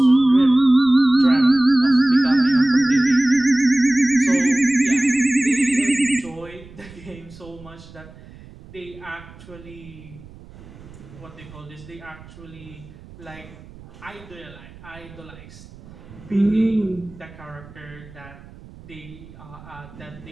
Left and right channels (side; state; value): right; noise; rumble, 20 dB below the sound